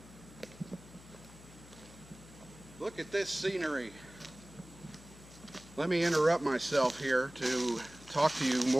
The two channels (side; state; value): left; noise; hum, 19 dB below the sound